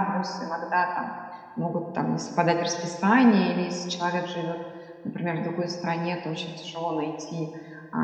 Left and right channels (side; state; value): both; identical; correlation 1.00